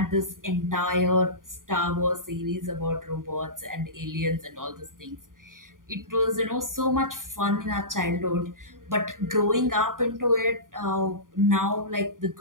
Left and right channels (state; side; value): late; left; 0.90 ms